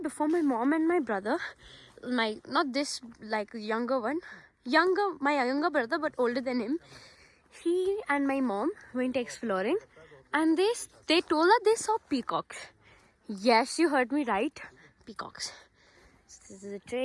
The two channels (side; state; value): both; identical; correlation 1.00